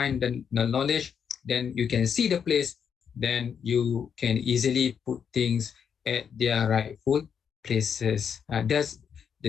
the knowledge, then you can see the place, then you can easily put things at their rightful places. That's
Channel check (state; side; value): quieter; right; 7.3 dB